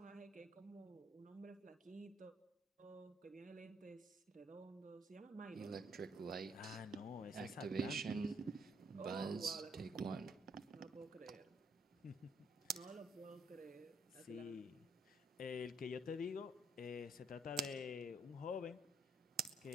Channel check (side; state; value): both; normal; correlation 0.70